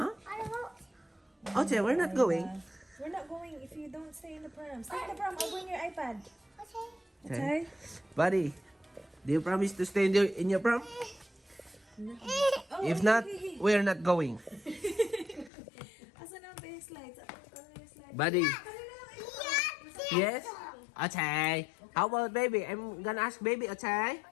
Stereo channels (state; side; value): drops out; right; at 15.5 s